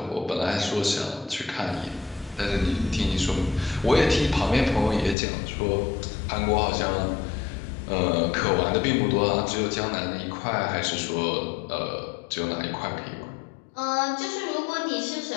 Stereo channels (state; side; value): drops out; right; at 5.2 s